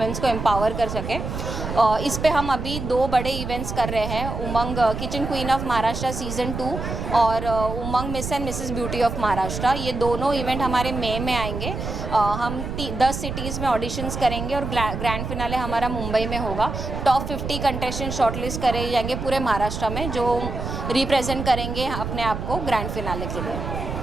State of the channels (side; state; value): right; noise; rumble, 5 dB below the sound